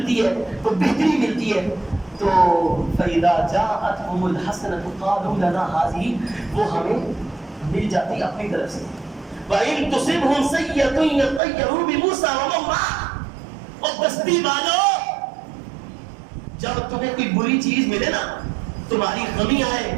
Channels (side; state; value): left; drops out; at 11.4 s